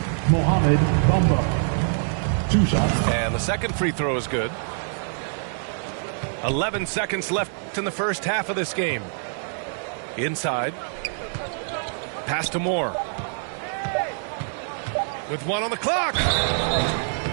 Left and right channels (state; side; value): silent; left; digital silence